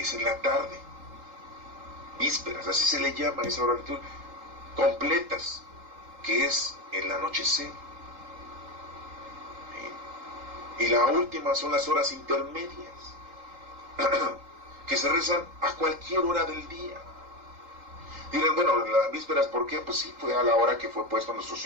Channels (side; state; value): left; late; 3.8 ms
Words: es en la tarde. Vísperas, así se le llama esa hora litúrgica. Completas, que es el anochecer. Y la última son las horas intermedias, que se rezan a cualquier hora del día. Dirán, bueno, las vísperas, ¿por qué? Pues sí, fue a la hora que fue puesto nuestro